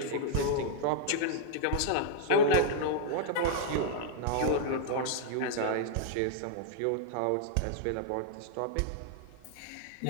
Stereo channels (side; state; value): both; different; correlation -0.01